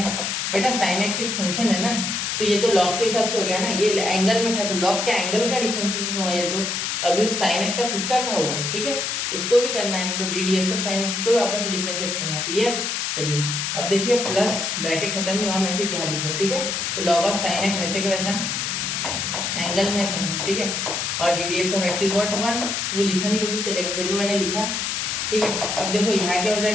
बेटा, sin x एक फंक्शन है ना, तो ये तो log के हिसाब से हो गया ना, ये एंगल में था तो log के एंगल का डिफरेंशिएशन हुआ, ये तो अभी उस sin x का खुद का हुआ, ठीक है, उसको भी करना है, तो d d x of sin x को भी वापस से डिफरेंशिएट करना है, क्लियर। चलिए अब देखिए प्लस ब्रैकेट खत्म नहीं हुआ, मैं सिर्फ यहाँ लिख रहा हूँ, ठीक है। तो log ऑफ sin x वैसे के वैसा एंगल में sin x, ठीक है, और D d x of x is what 1, वो लिखा नहीं तो भी चलेगा, फिर भी मैंने लिखा, ठीक है। अब देखो यहाँ क्या हो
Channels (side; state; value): left; noise; hiss, 1 dB below the sound